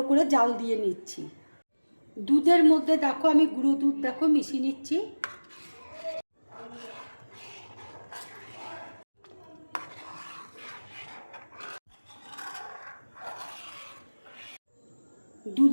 করে জাল দিয়ে নিচ্ছি। দুধের মধ্যে দেখো আমি গুঁড়ো দুধ দেখো মিশিয়ে নিচ্ছি।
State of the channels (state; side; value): inverted; both; correlation -1.00